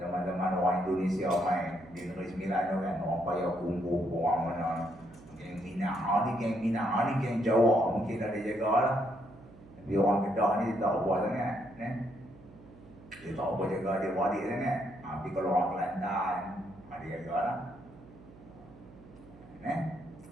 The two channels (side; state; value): right; noise; hum, 21 dB below the sound